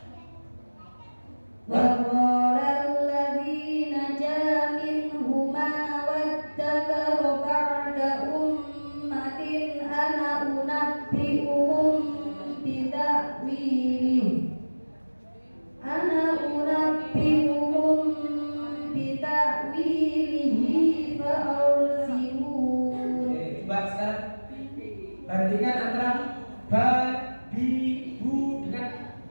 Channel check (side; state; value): both; inverted; correlation -1.00